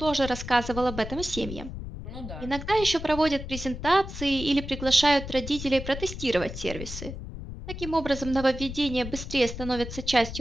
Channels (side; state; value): left; noise; rumble, 9 dB below the sound